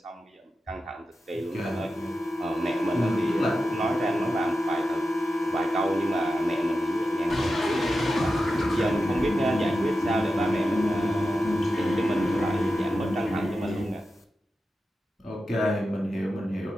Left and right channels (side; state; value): both; normal; correlation 0.91